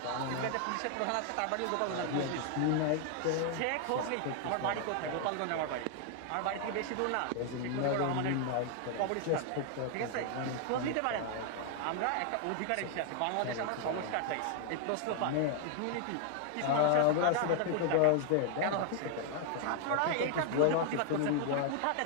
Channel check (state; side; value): different; both; correlation 0.00